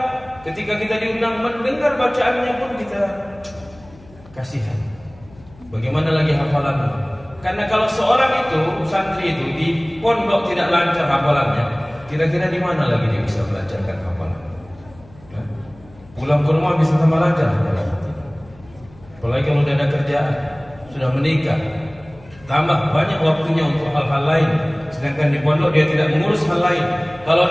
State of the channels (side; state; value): left; noise; hum, 24 dB below the sound